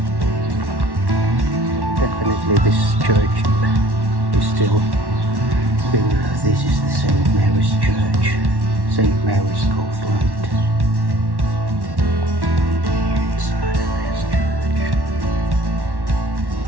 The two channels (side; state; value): left; late; 1.1 ms